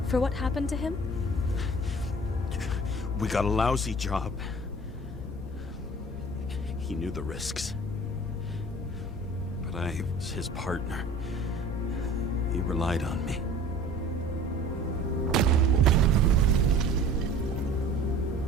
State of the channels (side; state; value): both; normal; correlation 0.45